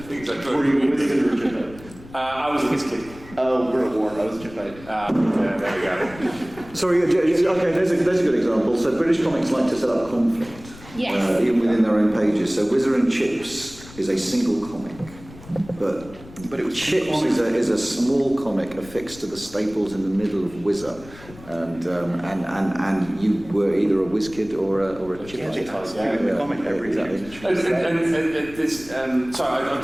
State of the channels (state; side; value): noise; left; rumble, 19 dB below the sound